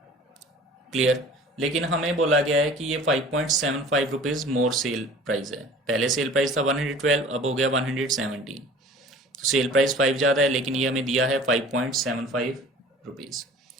क्लियर, लेकिन हमें बोला गया है कि ये 5.75 रुपीज़ मोर सेल प्राइस है, पहले सेल प्राइस था 112, अब हो गया 117, तो सेल प्राइस 5 ज़्यादा है, लेकिन ये हमें दिया है 5.75 रुपीज़,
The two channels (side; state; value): both; normal; correlation 0.45